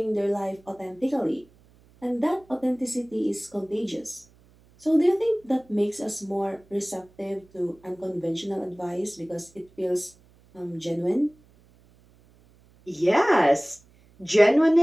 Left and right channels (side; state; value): right; noise; hum, 29 dB below the sound